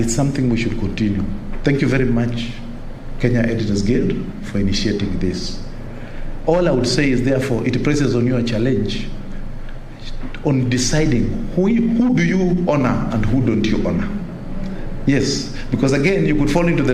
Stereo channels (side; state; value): both; identical; correlation 1.00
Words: something we should continue. Thank you very much, Kenya Editors Guild, for initiating this. All I would say is, therefore, it places on you a challenge on deciding who do you honor and who don't you honor. Yes, because again, you could fall into the